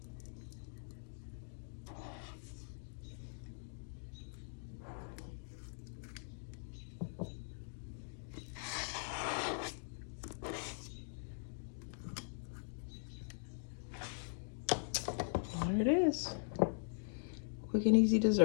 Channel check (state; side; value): silent; right; digital silence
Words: There it is. Quick and easy